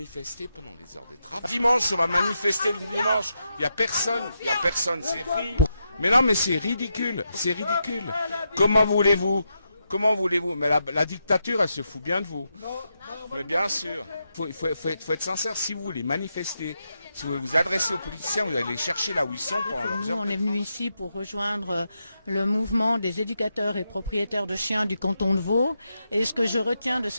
pendant les heures de travail. Dimanche, on va manifester le dimanche. Il y a personne, c'est ridicule. Mais non, mais c'est ridicule. Comment voulez-vous? Mais la dictature, elle se fout bien de vous. Mais bien sûr, il faut être sincère. Si vous voulez manifester, si vous voulez vous adresser aux politiciens, vous allez les chercher là où ils sont pendant leurs heures. Nous, on est venu ici pour rejoindre le mouvement des éducateurs et propriétaires de chiens du canton de Vaud. Et ce que je retiens de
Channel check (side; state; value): both; inverted; correlation -0.85